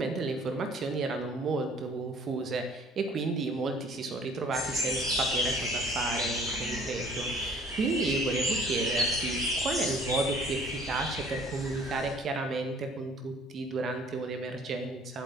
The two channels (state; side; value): normal; both; correlation 0.54